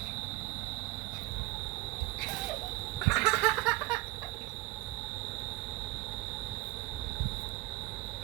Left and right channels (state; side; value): quieter; left; 20.3 dB